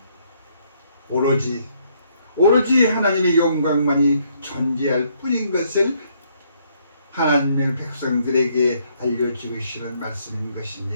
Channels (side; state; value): both; inverted; correlation -0.69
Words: 오로지 하나님의 영광만이 존재할 뿐인 것을 하나님의 백성들에게 알려주시는 말씀인